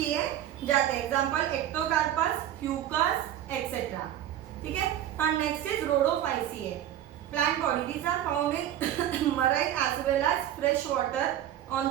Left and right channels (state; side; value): quieter; left; 11.6 dB